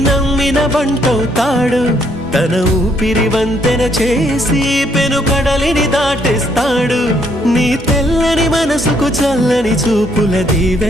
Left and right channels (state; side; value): normal; both; correlation 0.70